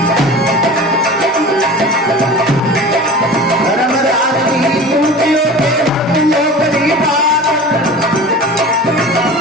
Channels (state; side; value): normal; both; correlation 0.37